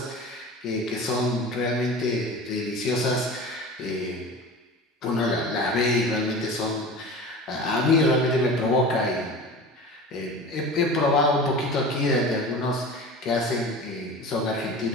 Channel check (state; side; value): normal; both; correlation 0.35